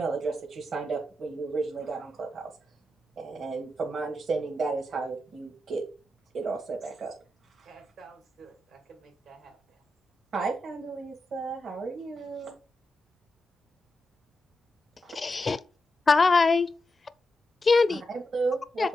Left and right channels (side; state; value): both; normal; correlation 0.88